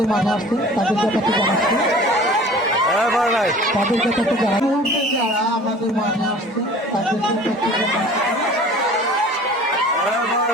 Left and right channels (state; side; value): normal; both; correlation 0.45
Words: মাঠে আসছে তাদের ব্যাপারটা জানাচ্ছি, তাদের ব্যাপারটা জানা মুহূর্তে যারা আমাদের মাঠে আসছে তাদের ব্যাপারটা জানাচ্ছি।